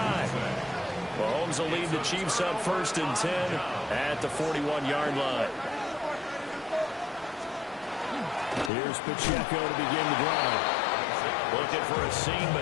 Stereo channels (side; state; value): right; drops out; at 8.7 s